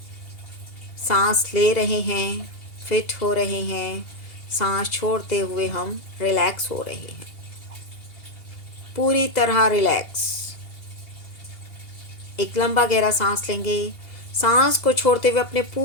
सांस ले रहे हैं, फिट हो रहे हैं, सांस छोड़ते हुए हम रिलैक्स हो रहे हैं, पूरी तरह रिलैक्स। एक लंबा गहरा सांस लेंगे। सांस को छोड़ते हुए अपने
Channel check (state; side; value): late; right; 2.8 ms